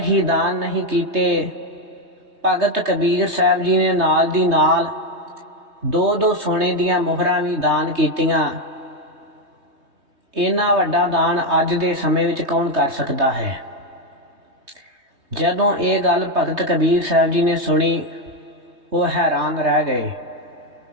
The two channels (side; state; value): left; late; 3.2 ms